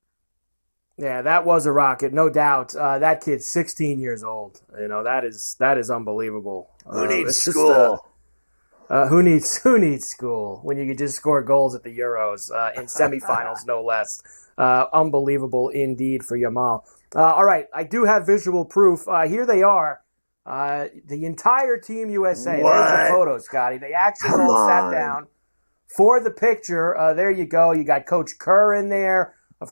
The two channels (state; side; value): inverted; both; correlation -1.00